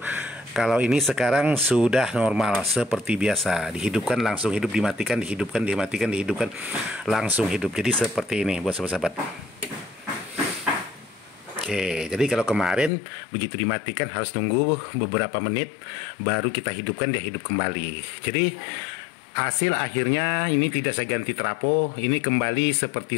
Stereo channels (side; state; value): right; drops out; at 12.9 s